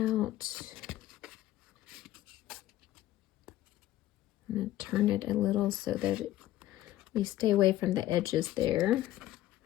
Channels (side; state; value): right; quieter; 14.5 dB